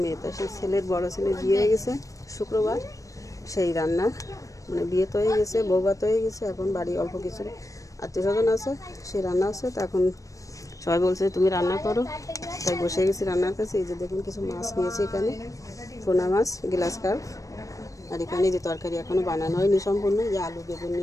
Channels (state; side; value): late; right; 0.16 ms